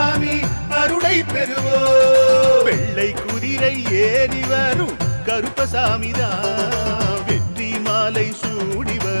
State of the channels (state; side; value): inverted; both; correlation -1.00